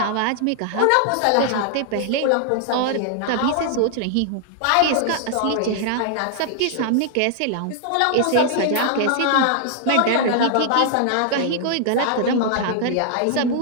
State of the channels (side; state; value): both; different; correlation 0.00